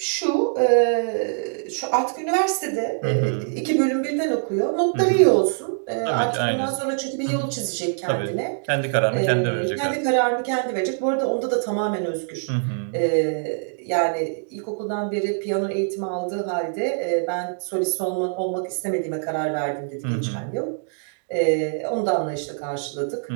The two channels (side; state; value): left; silent; digital silence